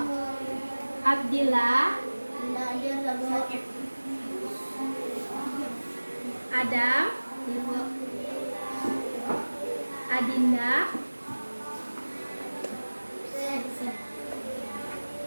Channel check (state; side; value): inverted; both; correlation -1.00